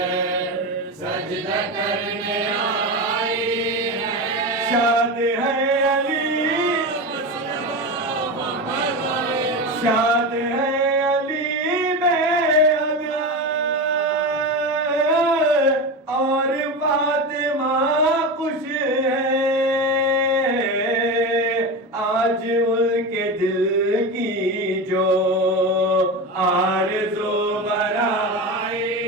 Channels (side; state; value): both; normal; correlation 0.22